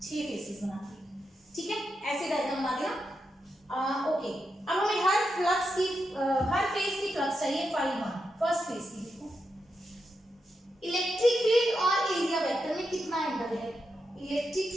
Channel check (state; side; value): normal; both; correlation 0.86